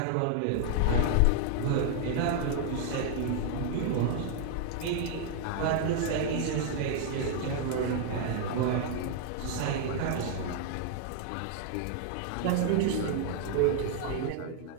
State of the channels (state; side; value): different; both; correlation 0.00